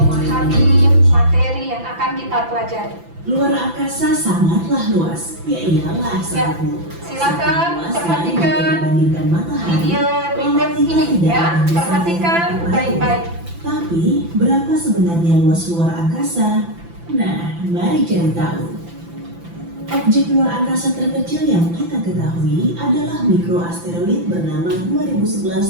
materi yang akan kita pelajari. Luar angkasa sangatlah luas, ya iyalah sahabatku. Silakan Luas perhatikan dibandingkan matahari. video berikut ini ya, perhatikan baik-baik. Tapi berapa sebenarnya luas luar angkasa? Nah, mari cari tahu. Objek luar angkasa terkecil yang kita ketahui adalah mikroasteroid bernama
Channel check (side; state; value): left; late; 5.9 ms